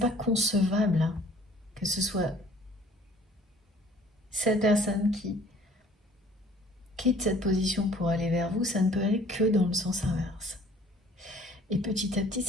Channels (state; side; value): normal; both; correlation 0.54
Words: concevable hein, que ce soit cette personne qui quitte cette position pour aller vers vous, ça ne peut aller que dans le sens inverse. Et petit à petit,